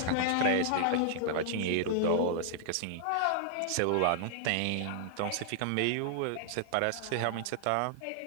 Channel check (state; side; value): different; both; correlation -0.01